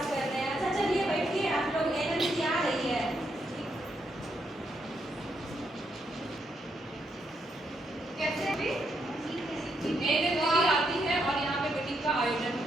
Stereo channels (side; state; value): both; normal; correlation 0.78